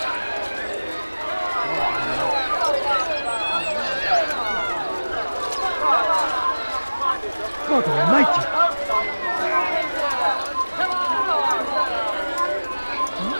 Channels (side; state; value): both; inverted; correlation -1.00